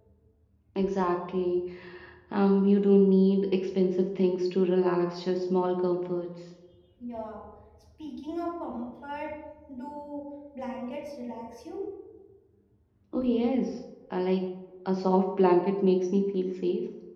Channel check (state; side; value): identical; both; correlation 1.00